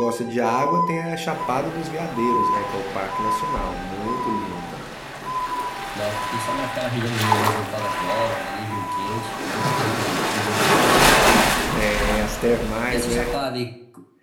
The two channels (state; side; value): identical; both; correlation 1.00